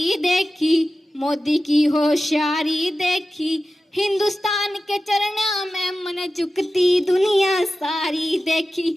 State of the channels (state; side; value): normal; both; correlation 0.94